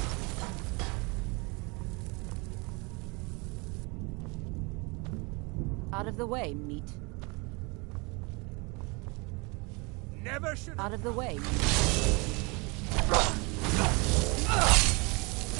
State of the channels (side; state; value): left; quieter; 28.5 dB